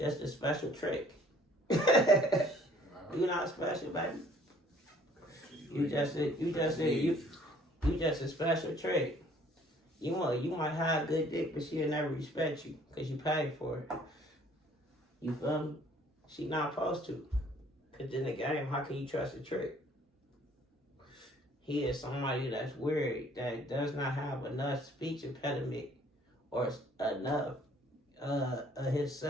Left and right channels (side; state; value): both; normal; correlation 0.58